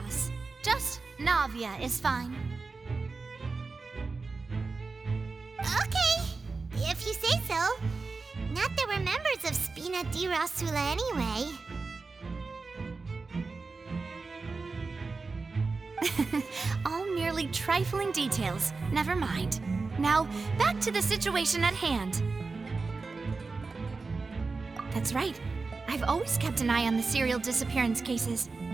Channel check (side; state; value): left; quieter; 4.1 dB